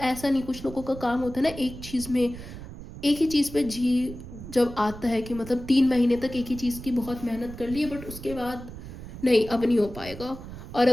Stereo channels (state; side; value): noise; right; rumble, 12 dB below the sound